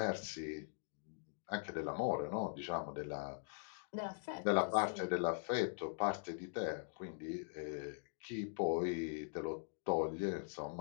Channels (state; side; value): silent; right; digital silence